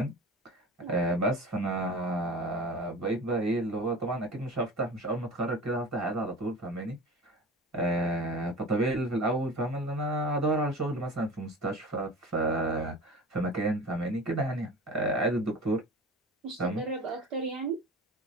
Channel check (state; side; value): normal; both; correlation 0.36